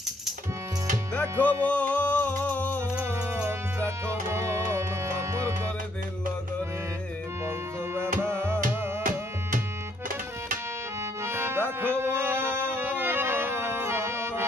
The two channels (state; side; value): normal; both; correlation 0.69